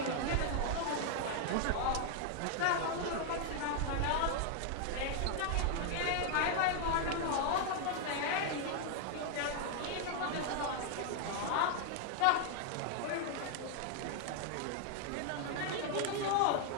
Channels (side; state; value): both; different; correlation 0.00